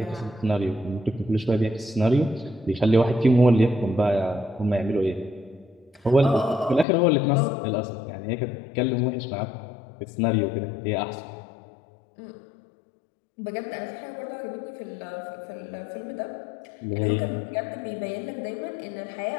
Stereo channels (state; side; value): drops out; right; at 6.9 s